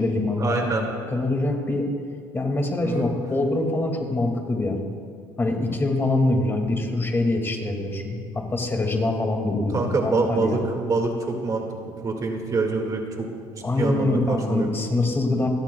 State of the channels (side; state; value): both; normal; correlation 0.75